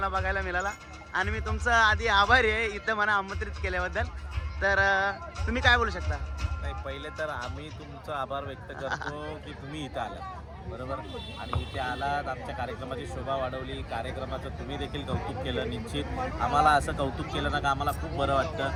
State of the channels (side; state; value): both; identical; correlation 1.00